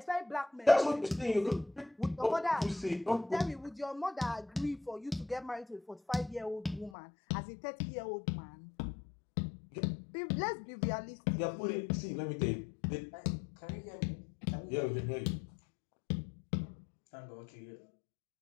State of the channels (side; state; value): right; drops out; at 6.9 s